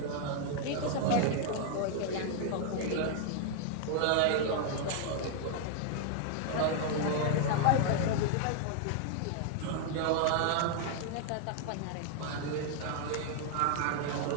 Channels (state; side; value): different; both; correlation 0.00